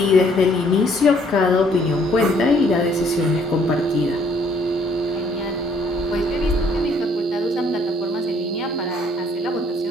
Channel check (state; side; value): normal; both; correlation 0.63